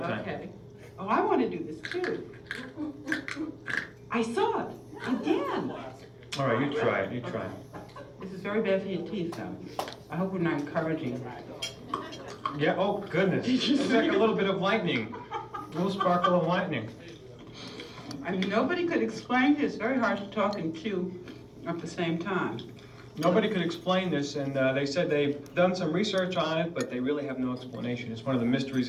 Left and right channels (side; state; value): both; identical; correlation 1.00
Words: Okay. Oh, I want to do this too. I saw it again. All right, you try it. You try it. This is very bad for your teeth, though. I hope we're not encouraging. Yeah. Oh goodness. It's like a little bit of lightning. A little sparkle of lightning. I mean, nobody could explain this. It's very hard to talk and chew at the same time. Nobody could explain this, and they said they've done some research on it, but they really have no explanation. It's one of the mysteries